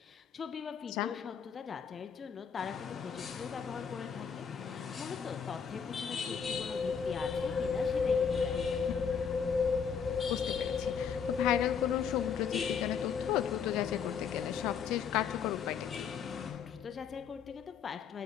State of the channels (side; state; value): right; quieter; 6.9 dB